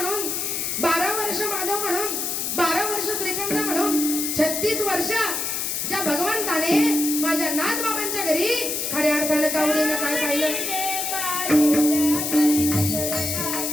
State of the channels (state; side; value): noise; left; hiss, 1 dB below the sound